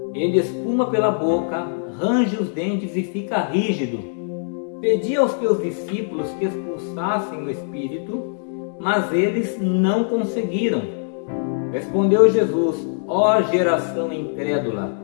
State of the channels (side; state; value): right; silent; digital silence